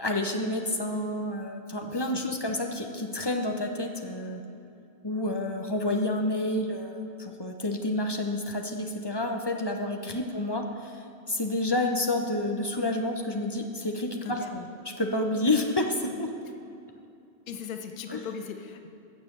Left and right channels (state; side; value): late; right; 1.2 ms